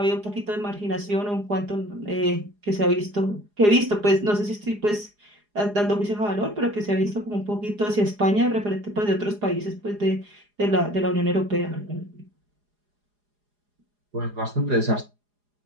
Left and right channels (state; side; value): late; left; 4.8 ms